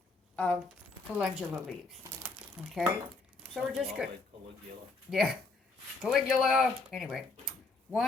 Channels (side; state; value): right; quieter; 3.6 dB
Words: of calendula leaves. Okay. So we're just good. Like Caligula. Yeah. Caligula. Anyway,